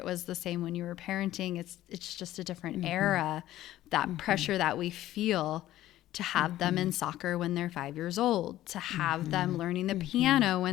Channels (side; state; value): right; quieter; 14.3 dB